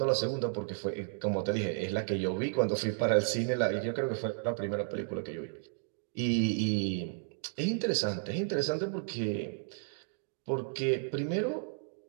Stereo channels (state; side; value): silent; left; digital silence